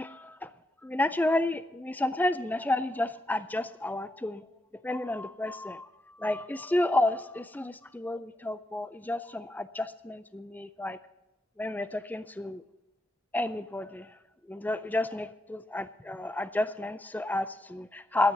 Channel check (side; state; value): both; normal; correlation 0.83